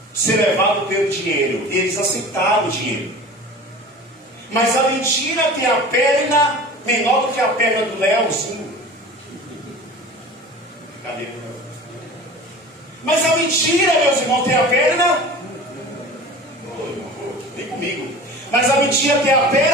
ser levados pelo dinheiro. E eles aceitaram o dinheiro. Mas a mentira tem a perna menor do que a perna do Leozinho. Cadê? Mas a mentira, meus irmãos, tem a perna. Vem comigo. Mas a mentira tem a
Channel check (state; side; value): normal; both; correlation 0.38